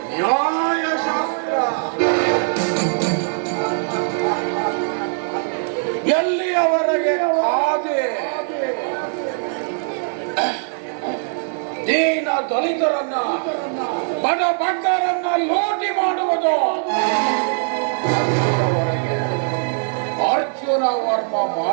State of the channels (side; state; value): left; silent; digital silence